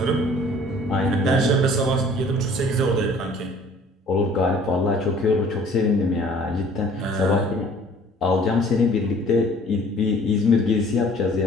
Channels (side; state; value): both; normal; correlation 0.53